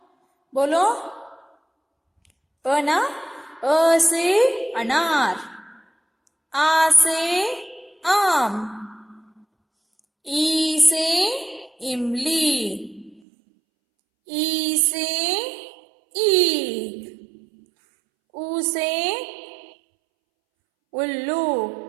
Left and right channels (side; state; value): left; drops out; at 13.2 s